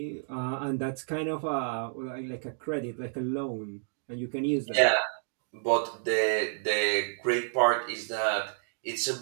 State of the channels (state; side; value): silent; left; digital silence